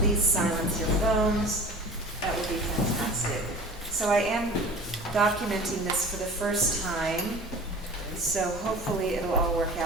silence your phones, that would be fantastic. So I am documenting this for the first time, so hopefully it'll all work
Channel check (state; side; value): normal; both; correlation 0.40